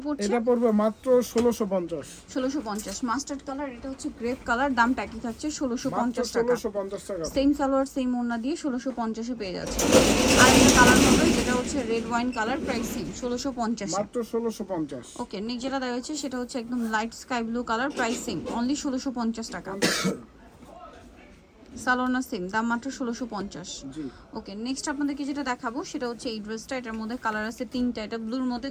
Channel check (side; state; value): both; identical; correlation 1.00